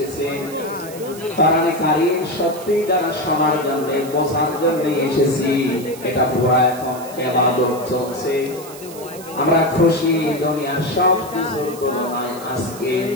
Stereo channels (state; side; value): noise; right; hiss, 16 dB below the sound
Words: কোরআনে কারীম সত্যি যারা শোনার জন্য বোঝার জন্য এসেছি, এটা পুরো এখন ইবাদত চলছে। আমরা খুশি, দুনিয়ার সব কিছুর তুলনায় আজকে